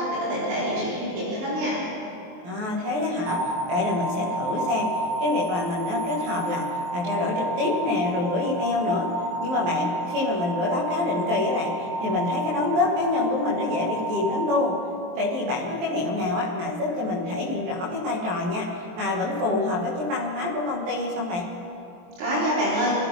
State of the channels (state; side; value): late; left; 23 ms